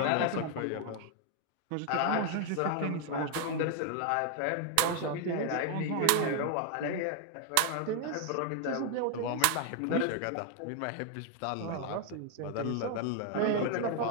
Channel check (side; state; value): both; different; correlation 0.00